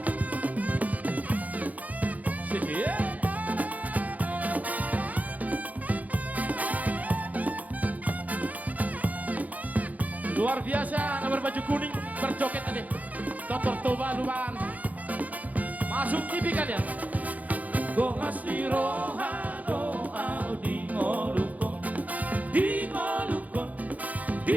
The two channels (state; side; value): late; left; 0.076 ms